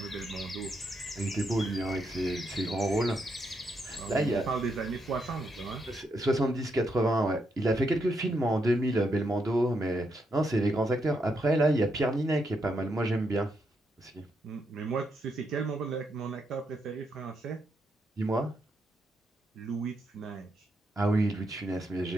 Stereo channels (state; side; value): normal; both; correlation 0.80